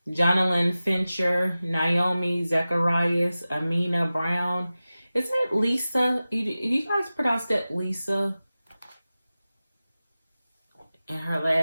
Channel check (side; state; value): both; inverted; correlation -0.95